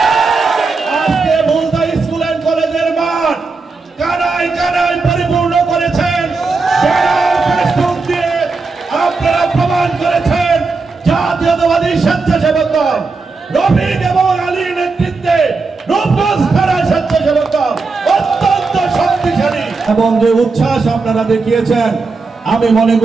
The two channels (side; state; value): left; quieter; 4.1 dB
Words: আজকে মুলতা স্কুল এন্ড কলেজের মাঠ কানায় কানায় পরিপূর্ণ করেছেন। আপনারা প্রমাণ করেছেন জাতীয়তাবাদী স্বেচ্ছাসেবক দল রফিক এবং আলীর নেতৃত্বে রূপগঞ্জ থানা স্বেচ্ছাসেবক দল অত্যন্ত শক্তিশালী এবং যে উচ্ছ্বাস আপনারা দেখিয়েছেন, আমি মনে